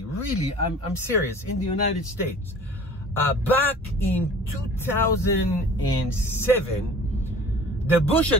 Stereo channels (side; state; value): both; normal; correlation 0.45